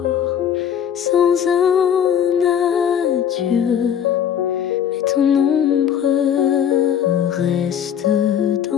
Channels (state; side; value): quieter; right; 8.9 dB